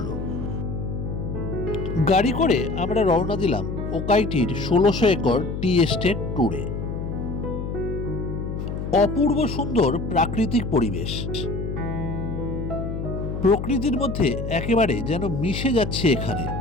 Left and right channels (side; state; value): left; noise; hum, 5 dB below the sound